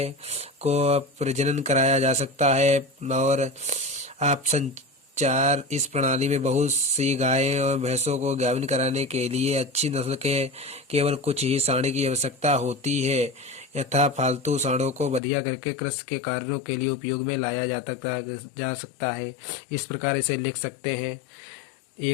को प्रजनन कराया जा सकता है। और ऑप्शन 4, इस प्रणाली में बहुत सी गायें और भैंसों को गाभिन कराने के लिए अच्छी नस्ल के केवल कुछ ही साँड की आवश्यकता होती है, यथा फालतू साँडों को बढ़िया करके कृषि के कार्यों के लिए उपयोग में लाया जा सकता है। इस प्रकार इसे लिख सकते हैं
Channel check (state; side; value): drops out; right; at 15.2 s